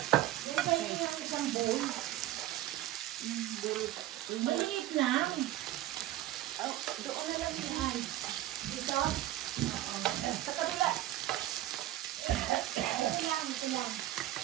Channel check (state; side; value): quieter; left; 14.7 dB